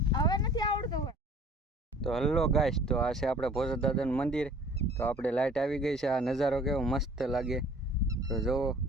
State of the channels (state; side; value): normal; both; correlation 0.50